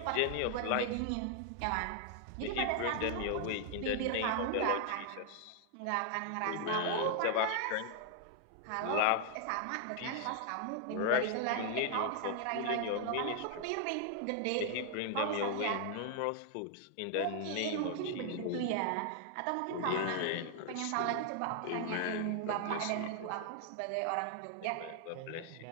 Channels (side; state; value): both; different; correlation 0.00